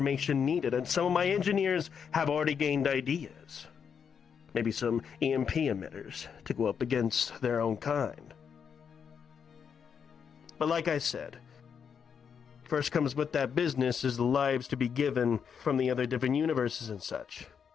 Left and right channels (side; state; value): right; quieter; 7.0 dB